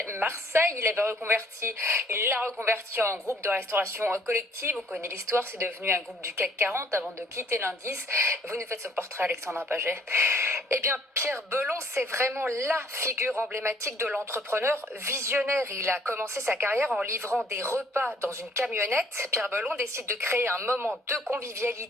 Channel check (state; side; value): normal; both; correlation 0.61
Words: Il l'a reconverti en groupe de restauration collective. On connaît l'histoire, c'est devenu un groupe du CAC 40 avant de quitter l'indice. Vous nous faites son portrait, Alexandra Paget. Eh bien, Pierre Belon, c'est vraiment la figure emblématique de l'entrepreneur visionnaire. Il a commencé sa carrière en livrant des repas dans une camionnette. Pierre Belon décide de créer un moment de